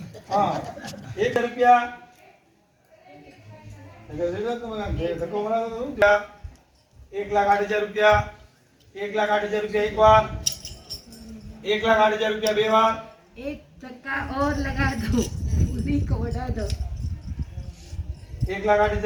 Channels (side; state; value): both; identical; correlation 1.00